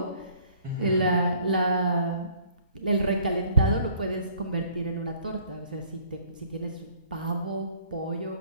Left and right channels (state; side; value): inverted; both; correlation -0.57